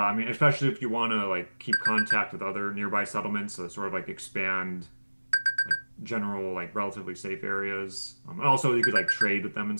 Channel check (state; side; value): inverted; both; correlation -1.00